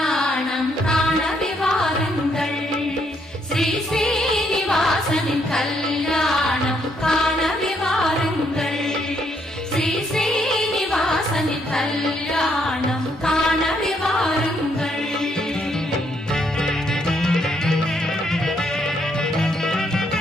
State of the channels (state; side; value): normal; both; correlation 0.73